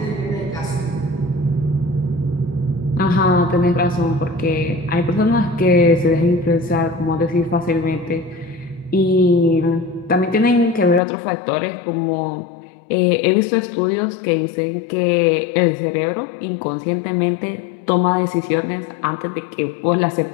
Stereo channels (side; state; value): right; drops out; at 11.0 s